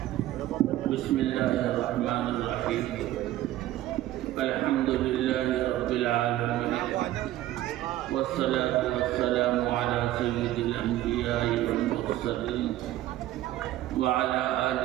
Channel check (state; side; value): quieter; left; 14.4 dB